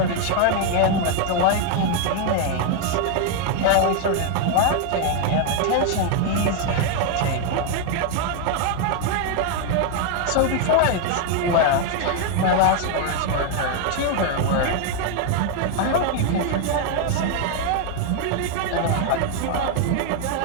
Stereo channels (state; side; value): different; both; correlation 0.00